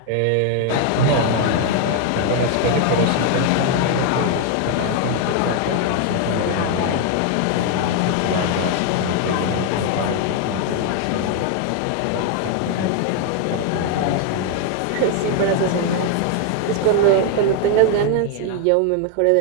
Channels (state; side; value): different; both; correlation 0.00